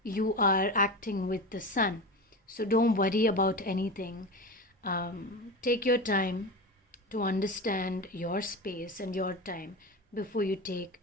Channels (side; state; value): both; normal; correlation 0.25